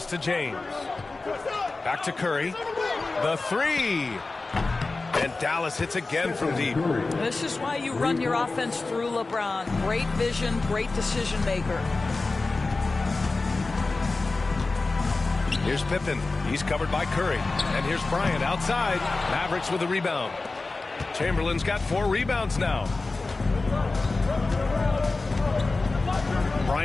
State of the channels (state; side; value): quieter; right; 3.5 dB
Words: to James. Back to Curry. The 3. And Dallas hits again from deep. This is why you run your offense through LeBron. Great vision, great decision maker. Here's Pippen. He's covered by Curry. And here's Bryant outside. Mavericks with a rebound. Chamberlain's got 4 rebounds now.